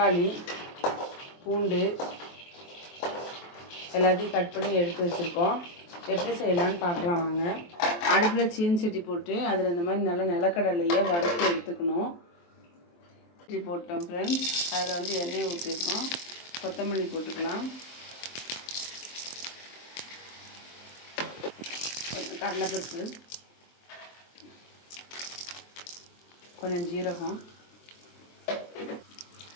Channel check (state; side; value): late; right; 23 ms